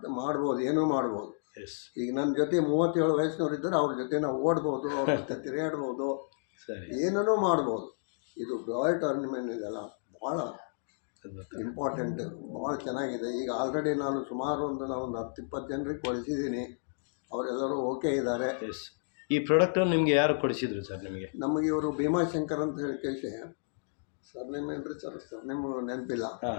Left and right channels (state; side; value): silent; right; digital silence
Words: ಮಾಡ್ಬೋದು, ಏನೂ ಮಾಡ್ಬೋದು. ಈಗ ನನ್ನ ಜೊತೆ 37 ವಯಸ್ಸಿನವ್ರು ಇದ್ದರೆ ಅವ್ರ ಜೊತೆ ನಾವು ಓಡ್ಬೋದು, ಅವ್ರ ಜೊತೆ ತಿರುಗಾಡ್ಬೋದು, ಏನೂ ಮಾಡ್ಬೋದು. ಇದು ಬಯೋಟೋರಿಯಂ ಇದೆಲ್ಲ ಭಾಳ ಇಂಪಾರ್ಟೆಂಟ್, ಭಾಳ ಚೆನ್ನಾಗಿದೆ. ಈಗ ಆಲ್ರೆಡಿ ನಾನು ಸುಮಾರು ಒಂದು 10-20 ಜನರಿಗೆ ಕೊಡಿಸಿದ್ದೀನಿ, ಅವರೆಲ್ಲರೂ ಓಕೆ ಇದ್ದಾರೆ. ಈ ಪ್ರಾಡಕ್ಟನ್ನು ನಿಮಗೆ ಯಾರು ಕೊಡಿಸಿದ್ರು ಸರ್? ನಮಗೆ ಇವರು ಭೀಮಾಶಂಕರ್ ಅಂತ ಹೇಳಿ ಕೇಳಿ, ಸರ್ನೇಮ್ ಏನ್ರಿ ಸರ್? ಸರ್ನೇಮ್ ನೆನಪಿಲ್ಲ,